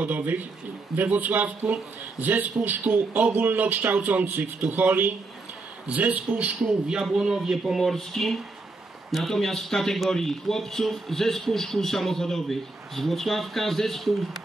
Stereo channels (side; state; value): left; quieter; 3.4 dB